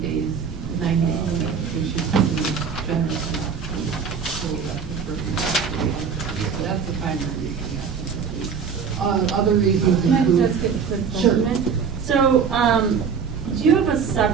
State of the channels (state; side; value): quieter; left; 6.4 dB